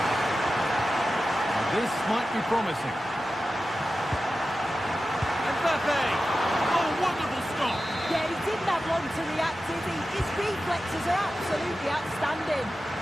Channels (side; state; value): both; normal; correlation 0.93